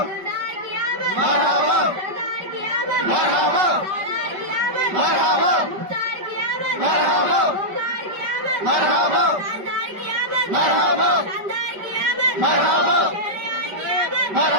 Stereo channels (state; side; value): late; left; 5.2 ms